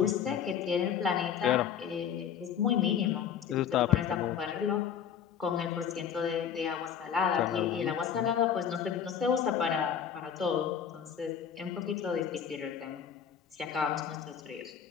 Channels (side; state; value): right; quieter; 8.2 dB